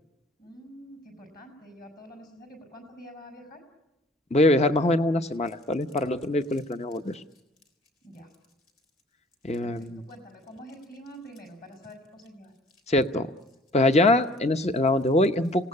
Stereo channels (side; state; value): both; normal; correlation 0.54